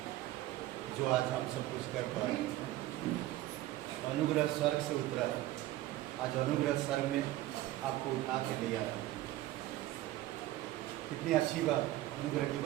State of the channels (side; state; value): left; quieter; 15.6 dB